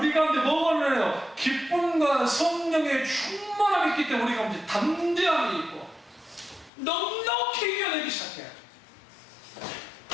가운데 뭐가 일어나요? 기쁨과 성령의 충만함이 있기 때문에 우리 가운데 담대함이 있고 넉넉히 이겨내기 시작해요.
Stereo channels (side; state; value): right; drops out; at 6.7 s